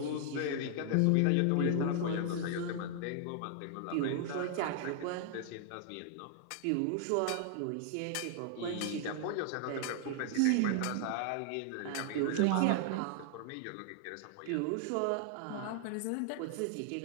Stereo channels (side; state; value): both; different; correlation 0.00